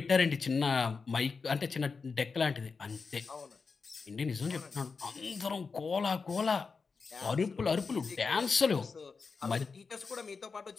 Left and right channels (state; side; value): quieter; right; 4.8 dB